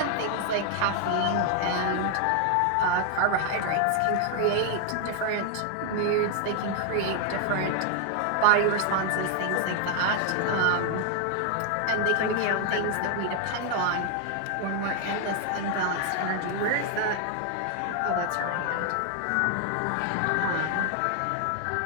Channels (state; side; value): different; both; correlation 0.00